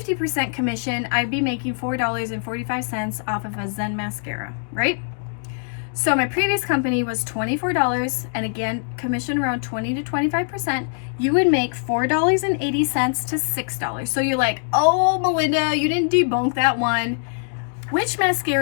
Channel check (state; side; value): silent; right; digital silence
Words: commission, I'd be making $4.45 off of a Zen mascara, right? So my previous company was $24, and again, commission around 20 to 25%. You would make $4.80 to $6. So you're like, oh, Melinda, you didn't debunk that one. Which